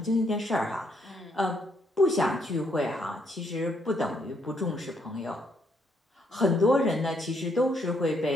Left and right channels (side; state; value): both; normal; correlation 0.73